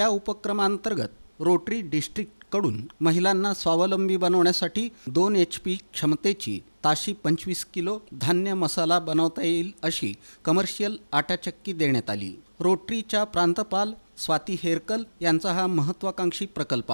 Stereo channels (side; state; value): both; inverted; correlation -1.00